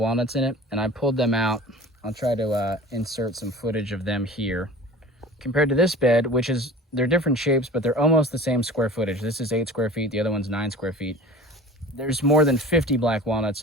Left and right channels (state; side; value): normal; both; correlation 0.40